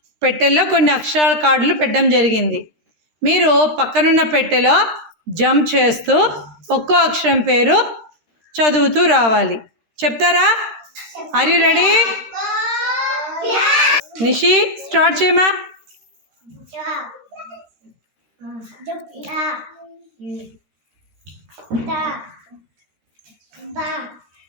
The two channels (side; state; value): left; late; 13 ms